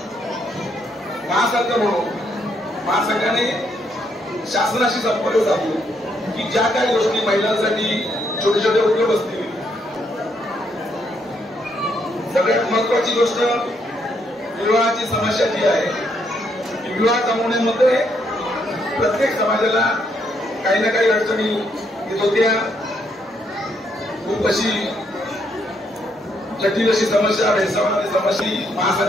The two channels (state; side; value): normal; both; correlation 0.74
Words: महासंघ म्हणून महासंघाने शासनाशी संपर्क साधून की ज्या काही गोष्टी महिलांसाठी छोटे छोटे उद्योग असतील, सगळ्यात महत्वाची गोष्ट विवाहाची समस्या जी आहे, विवाह जमवण्यामध्ये प्रत्येक समाजाला काही ना काही अडचणी येत होत्या. खूप अशी जटिल अशी समस्या, भेदभावाची समस्या